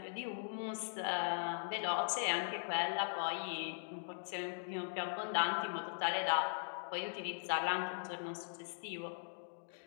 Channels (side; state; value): right; silent; digital silence